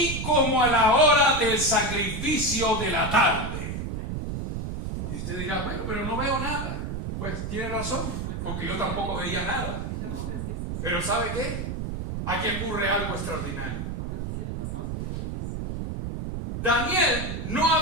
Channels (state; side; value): noise; right; rumble, 4 dB below the sound